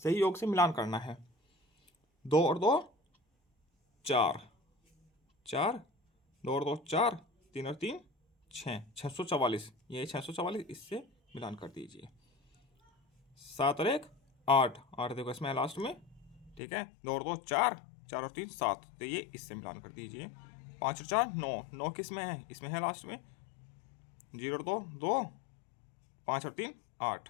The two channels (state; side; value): drops out; right; at 16.6 s